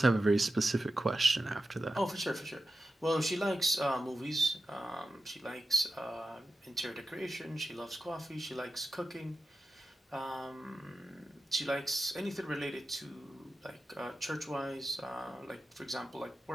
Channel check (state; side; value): normal; both; correlation 0.91